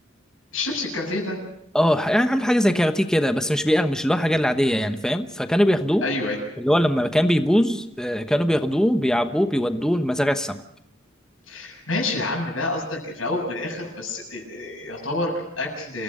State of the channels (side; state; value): both; normal; correlation 0.85